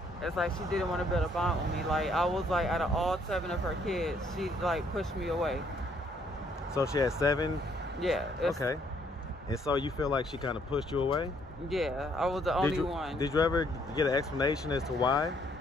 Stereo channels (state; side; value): normal; both; correlation 0.67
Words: It's like she didn't want to build a bond with me. Like I was like out of all 7 of her kids, she like pushed me away. So she had 7? Yeah. Okay. And so you feel like she kind of pushed you away? Yeah, I was the only one. Did you ever get an explanation as to why?